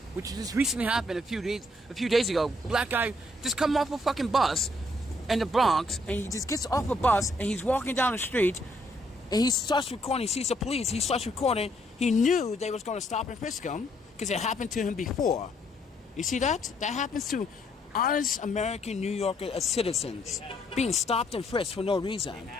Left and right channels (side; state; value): both; normal; correlation 0.69